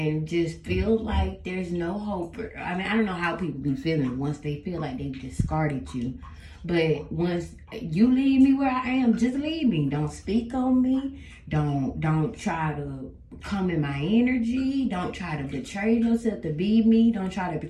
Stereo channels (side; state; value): both; identical; correlation 1.00